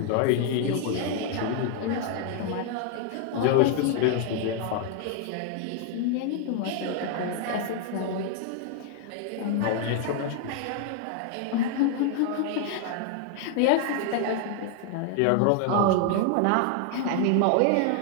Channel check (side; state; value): both; different; correlation 0.00